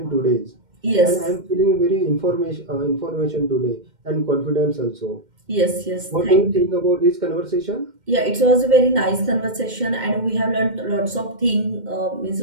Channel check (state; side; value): late; left; 2.1 ms